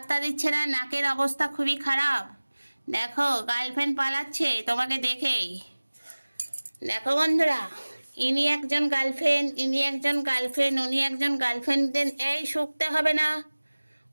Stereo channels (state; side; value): inverted; both; correlation -1.00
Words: দিচ্ছে না, নাকের অবস্থা খুবই খারাপ। দেখো গার্লফ্রেন্ড পালাচ্ছে তোমাকে দেখেই। দেখো বন্ধুরা, ইনি একজন গার্লফ্রেন্ড, ইনি একজন গার্লফ্রেন্ড, উনি একজন গার্লফ্রেন্ড। এই শুকতে হবে না,